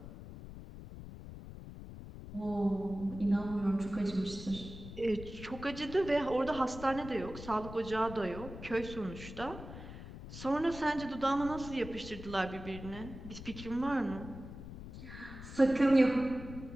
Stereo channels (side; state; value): left; noise; rumble, 12 dB below the sound